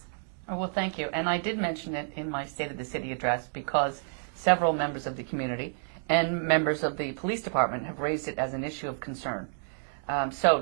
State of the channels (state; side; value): silent; left; digital silence